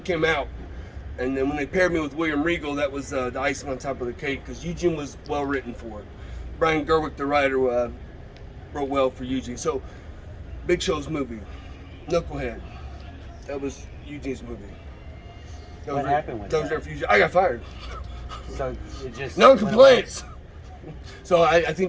came out, and then when they paired me with William Regal, that was the icing on top of the cake, because Eugene was well written for it. Brian Gerwick, the writer, wrote well for Eugene. So, Big Show's movie, Knucklehead, that was Eugene's movie. What happened with that? Eugene. I got fired. So it just No complaints. So I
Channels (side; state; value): both; identical; correlation 1.00